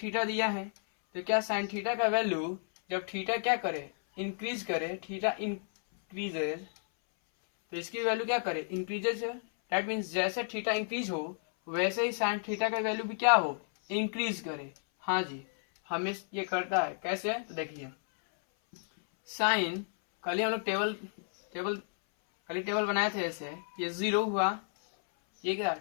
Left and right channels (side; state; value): right; silent; 56 dB below the other